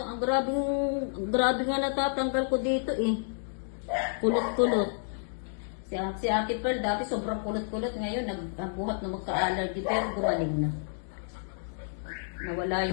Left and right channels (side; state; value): right; silent; digital silence